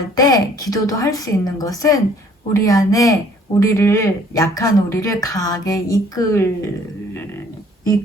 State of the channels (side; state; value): both; normal; correlation 0.58